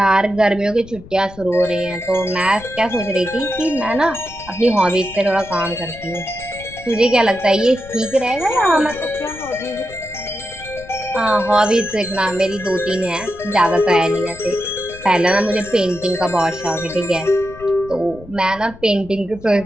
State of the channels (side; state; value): left; noise; rumble, 19 dB below the sound